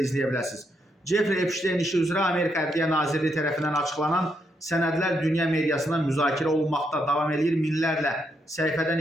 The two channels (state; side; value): normal; both; correlation 0.79